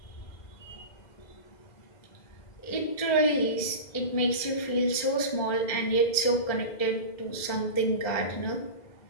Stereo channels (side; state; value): right; late; 2.0 ms